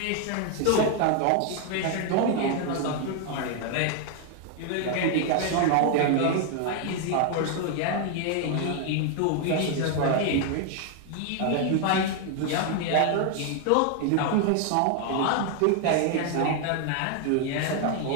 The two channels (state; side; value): different; both; correlation 0.01